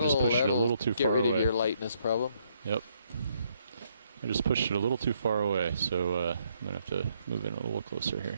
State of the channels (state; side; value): inverted; both; correlation -0.71